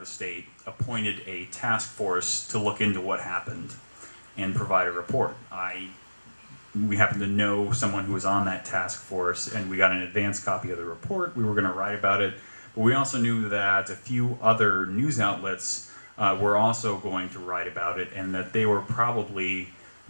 state appointed a task force to look into what happened and provide a report. We happened to know someone who was on that task force, and we got an advance copy of the report. We were going to write about it, but we also knew that a few other news outlets were also going to write about it, and that they were probably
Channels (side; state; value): both; inverted; correlation -1.00